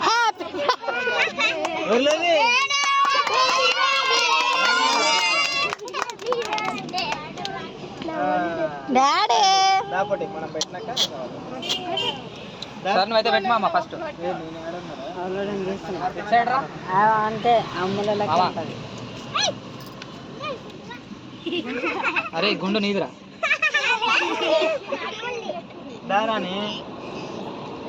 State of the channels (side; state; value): both; identical; correlation 1.00